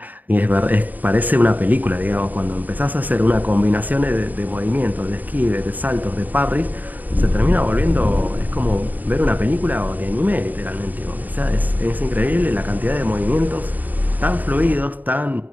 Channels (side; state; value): left; late; 0.082 ms